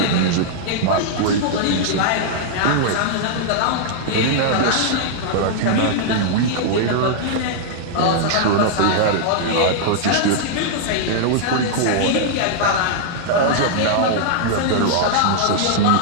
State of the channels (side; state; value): both; different; correlation -0.01